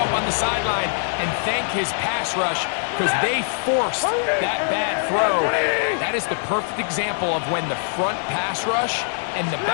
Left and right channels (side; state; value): right; silent; digital silence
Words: on the sideline and thank his pass rush because they forced that bad throw. That is the perfect example of when the front pass rush and the